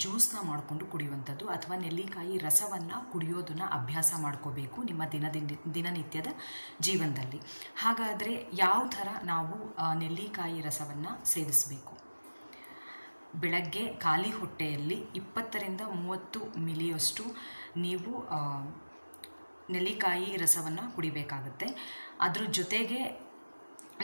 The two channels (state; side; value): inverted; both; correlation -1.00